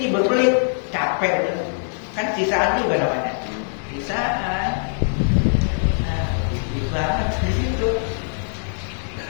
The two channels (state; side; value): silent; right; digital silence